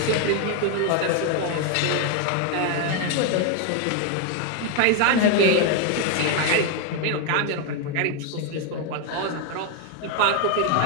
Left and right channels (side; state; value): both; different; correlation 0.01